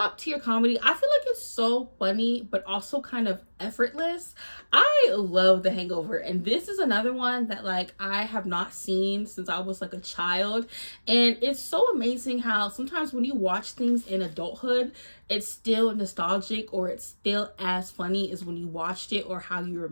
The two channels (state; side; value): inverted; both; correlation -1.00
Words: tier comedy. I feel like it's so funny, but also kind of effortless. I love The Hangover. And this is another one that like I have not seen since I was like a child. And it's so amazing how sometimes when you watch things in adulthood, it's still nostalgic or it's still as funny as when you watched it or how you